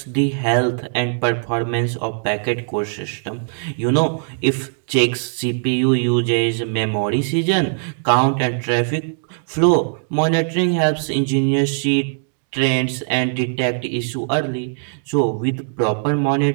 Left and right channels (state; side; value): silent; left; digital silence